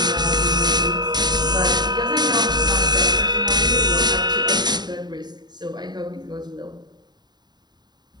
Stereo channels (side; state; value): left; late; 0.20 ms